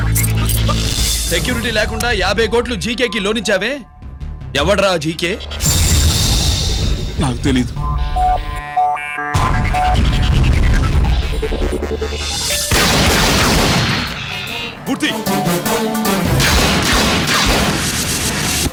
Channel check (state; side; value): identical; both; correlation 1.00